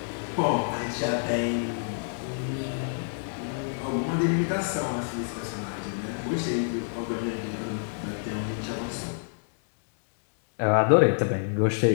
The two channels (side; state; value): right; silent; digital silence